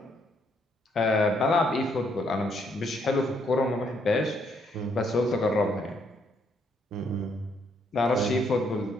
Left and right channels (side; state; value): both; normal; correlation 0.71